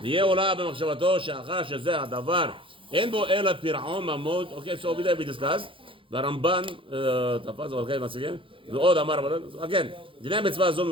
ויהיה עולה במחשבתו שאחר שזה הדבר אין בו אלא פירעון ממון. Okay, so over there we discussed. והרמב"ן תפס ולכן מציגים ועוד אמר again דיני מצווה זו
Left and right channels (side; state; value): left; late; 0.25 ms